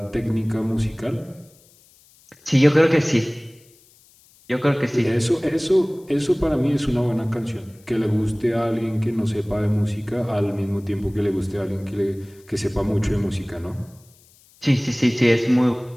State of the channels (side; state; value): left; noise; hiss, 29 dB below the sound